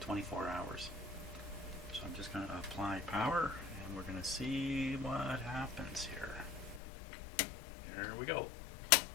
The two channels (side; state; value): right; drops out; at 6.8 s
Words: hours. So I'm just going to apply power, and we're going to see what happens here. There we go.